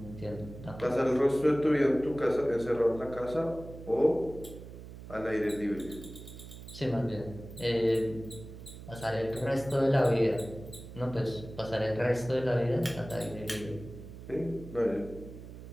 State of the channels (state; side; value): noise; right; hum, 14 dB below the sound